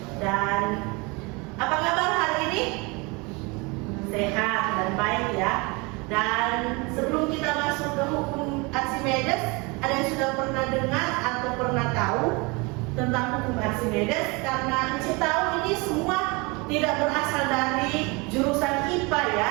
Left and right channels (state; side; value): quieter; left; 27.4 dB